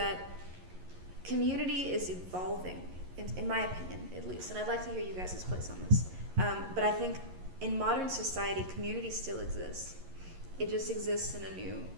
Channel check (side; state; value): left; late; 11 ms